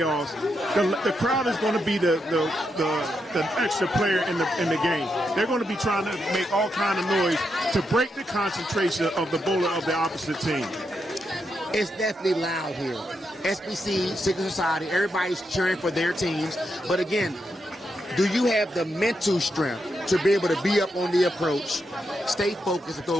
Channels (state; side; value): normal; both; correlation 0.83